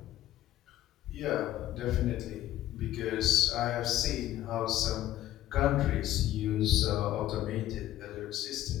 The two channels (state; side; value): quieter; right; 13.6 dB